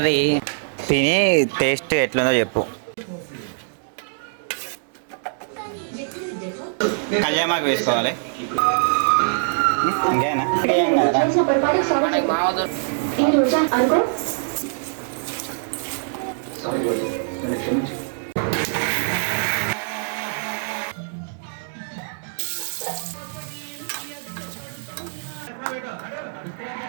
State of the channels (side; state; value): left; silent; digital silence